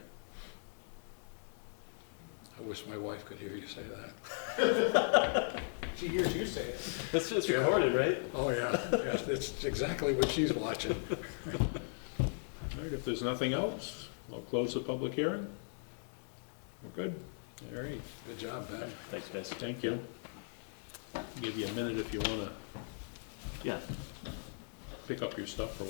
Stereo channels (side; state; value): right; silent; digital silence